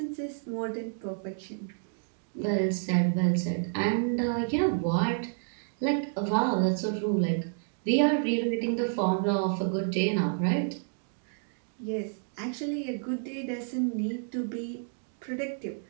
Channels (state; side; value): silent; left; digital silence